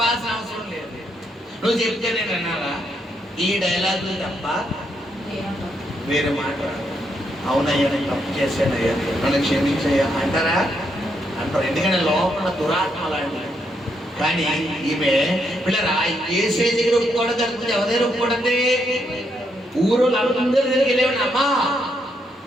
అవసరం లేదు, నువ్వు చెప్తే నేను అన్నారా? ఈ డైలాగులు తప్ప వేరే మాట. అవునయ్యా నేను తప్పు చేశానయ్యా, నన్ను క్షమించయ్యా అంటారా? అంటారు. ఎందుకంటే లోపల దురాత్మ లాంటి. కానీ ఈమె పిల్లరా ఏసే దగ్గర ఒప్పుకోవడం కలుగుతుంది. ఎవరైనా ఒప్పుకోవడండి? ఊరు అందరి దగ్గరికి వెళ్ళేవాడిని, అమ్మా,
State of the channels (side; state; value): both; normal; correlation 0.77